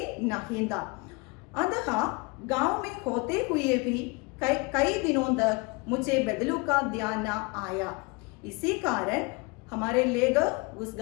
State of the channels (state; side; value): quieter; right; 27.6 dB